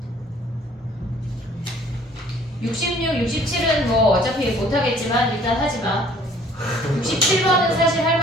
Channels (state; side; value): normal; both; correlation 0.56